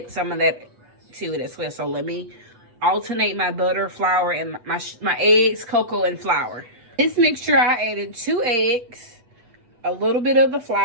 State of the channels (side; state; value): left; late; 8.4 ms